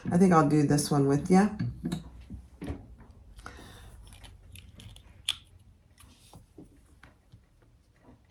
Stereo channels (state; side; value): identical; both; correlation 1.00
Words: I think I'll do this one with you.